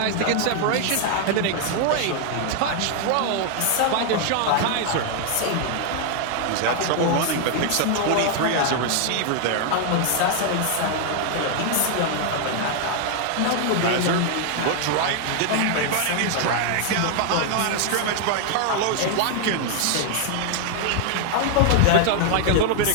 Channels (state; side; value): different; both; correlation 0.00